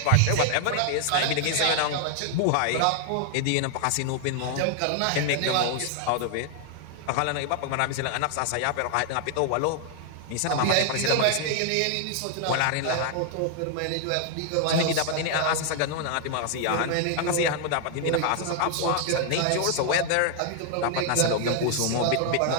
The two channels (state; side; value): different; both; correlation 0.00